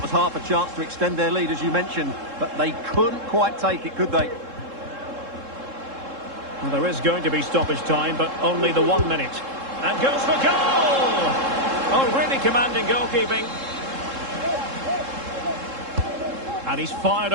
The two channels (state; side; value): late; left; 3.7 ms